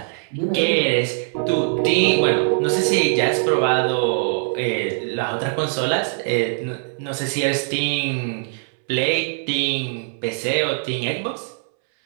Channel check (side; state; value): left; silent; 64 dB below the other